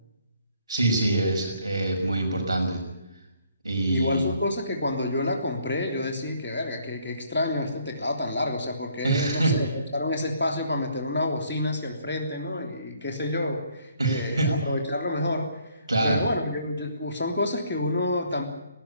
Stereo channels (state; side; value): inverted; both; correlation -0.65